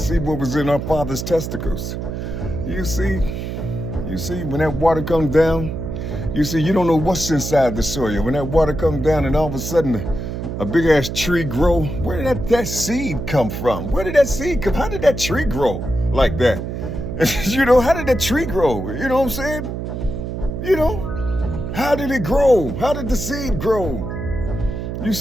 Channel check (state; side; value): noise; right; hum, 5 dB below the sound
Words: what was in our father's testicles. You see? You see, when that water comes down, you see, you don't know what's inside the soil. When that water comes down and all of a sudden a big ass tree grow, where did that seed come from? Where did that seed come? How did that tree grow like that? You know, how did that tree grow? You know what I'm saying? You know, how did it grow? How did the seed grow? You